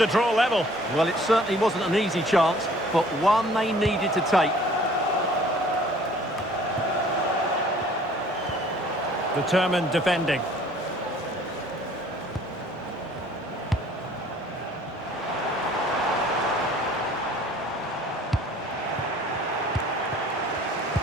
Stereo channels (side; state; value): both; normal; correlation 0.54